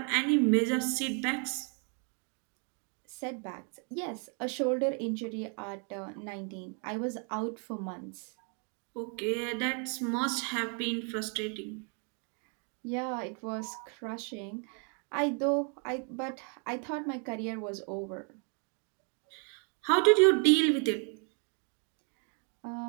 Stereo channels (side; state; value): left; quieter; 39.5 dB